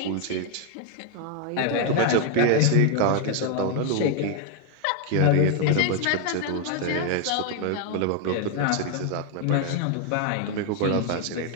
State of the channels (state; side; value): different; both; correlation 0.01